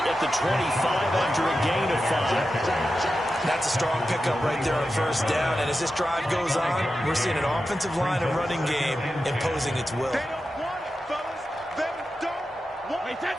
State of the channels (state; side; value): normal; both; correlation 0.91